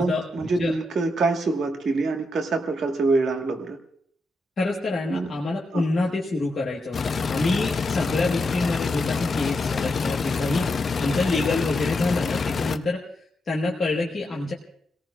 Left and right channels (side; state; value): both; normal; correlation 0.84